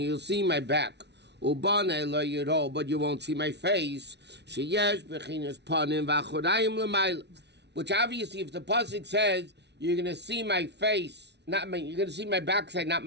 you'll see my back, but you won't see my face. Which obviously, if the pasuk says you're going to see my face, you're going to see my backside, not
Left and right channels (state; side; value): late; left; 0.50 ms